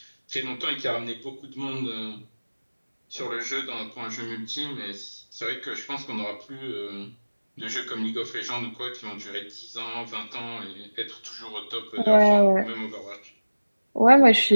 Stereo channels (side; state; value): both; inverted; correlation -1.00